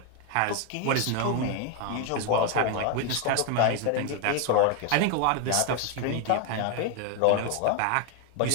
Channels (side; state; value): both; different; correlation 0.01